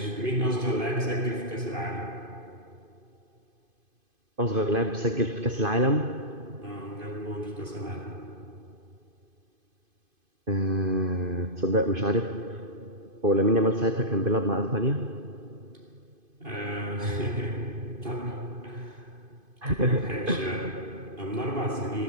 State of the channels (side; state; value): left; late; 2.5 ms